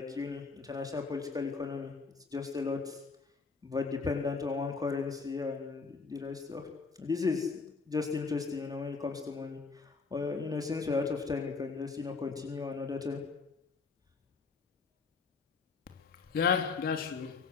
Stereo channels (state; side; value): quieter; right; 4.6 dB